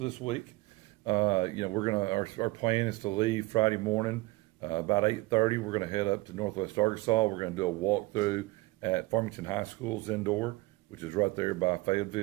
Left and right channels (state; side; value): quieter; left; 21.9 dB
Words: this week. You know, our plan is to leave Friday morning about 8:30. We're going to head up to Northwest Arkansas. We're going to do a walkthrough at Farmington High School's indoor, which is right there by